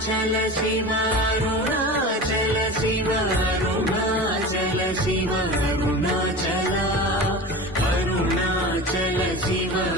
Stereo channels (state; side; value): normal; both; correlation 0.32